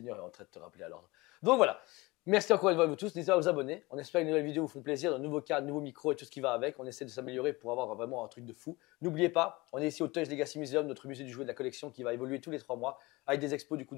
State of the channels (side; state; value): right; quieter; 22.6 dB